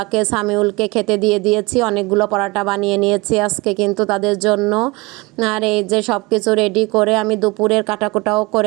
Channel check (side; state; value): left; quieter; 24.4 dB